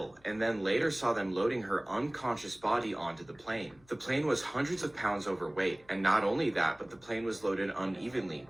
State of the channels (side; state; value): left; noise; hum, 29 dB below the sound